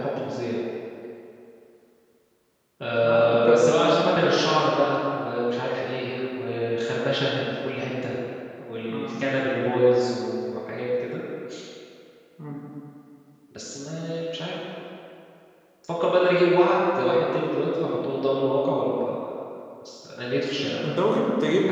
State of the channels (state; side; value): identical; both; correlation 1.00